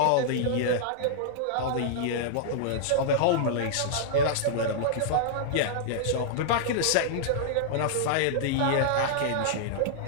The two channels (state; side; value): different; both; correlation -0.02